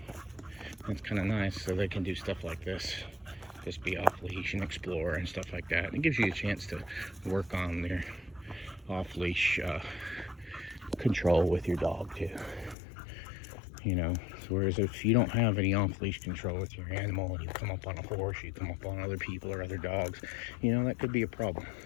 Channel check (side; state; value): right; drops out; at 12.8 s